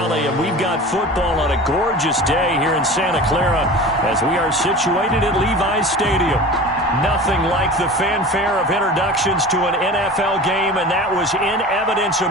And we've got football on a gorgeous day here in Santa Clara as we are situated at Levi's Stadium. Nothing like the fanfare of introductions to an NFL game, and that was in evidence a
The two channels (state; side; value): normal; both; correlation 0.36